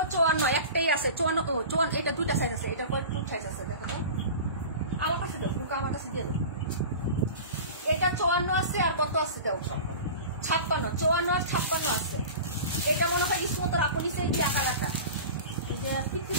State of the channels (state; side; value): inverted; both; correlation -0.34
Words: 54, একটাই আছে 54। এটা দুইটা সাইজ আছে, এটা পরে টু সাইজ আছে, দেখো তো আমার কাছে দাও, বুকা আমার কাছে দিয়ে দাও। এটা 54 আছে, আর কত আছে দাও, 56, 54 আর 56 আছে। এটা মনে হয় ইসমত আপু নিচে দিয়ে কালারটা, এই যে পিচ্ছি